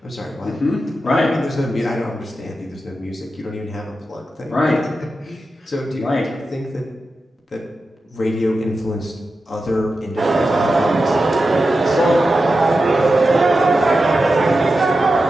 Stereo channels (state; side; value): normal; both; correlation 0.91